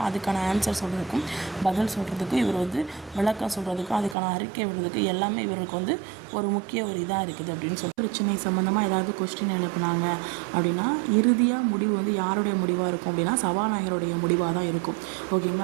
அதுக்கான ஆன்சர் சொல்கிறதுக்கும் பதில் சொல்கிறதுக்கும், இவர் வந்து விளக்கம் சொல்கிறதுக்கும், அதுக்கான அறிக்கை விடுறதுக்கு எல்லாமே இவருக்கு வந்து ஒரு முக்கிய இதாக இருக்குது அப்படின்னு சொல்லி பிரச்சனை சம்மந்தமாக ஏதாவது கொஸ்டின் எழுப்புனாங்க அப்படின்னா இறுதியாக முடிவு வந்து யாருடைய முடிவாக இருக்கும் அப்படின்னா சபாநாயகருடைய முடிவாக தான் இருக்கும்.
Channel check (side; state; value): left; drops out; at 4.2 s